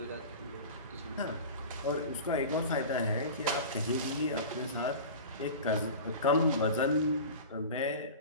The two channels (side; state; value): both; inverted; correlation -0.34